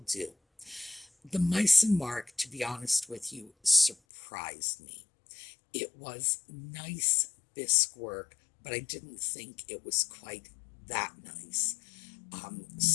do. The Meissen mark, to be honest with you, surprised me. It was nice bisque work, but I didn't think it was quite that nice.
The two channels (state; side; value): drops out; right; at 4.0 s